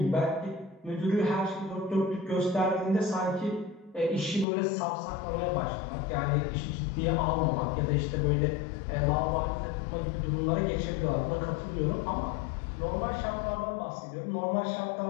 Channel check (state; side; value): drops out; right; at 4.5 s